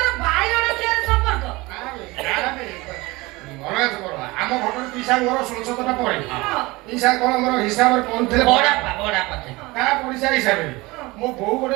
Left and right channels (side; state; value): left; quieter; 22.2 dB